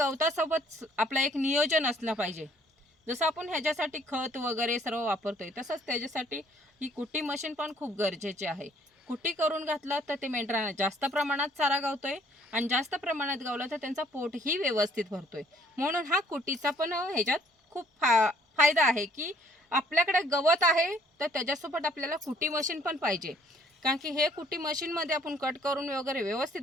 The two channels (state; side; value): normal; both; correlation 0.61